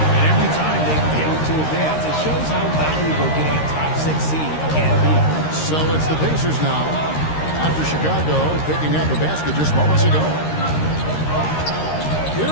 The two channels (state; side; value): late; right; 13 ms